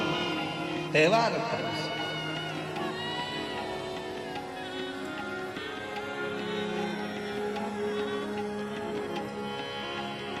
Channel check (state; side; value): identical; both; correlation 1.00